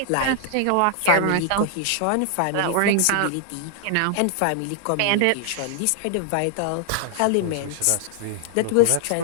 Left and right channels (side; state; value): both; different; correlation 0.00